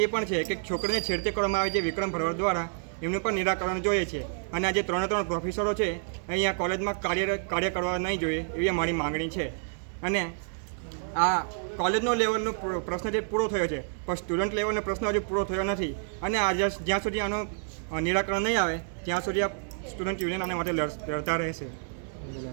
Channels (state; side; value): silent; left; digital silence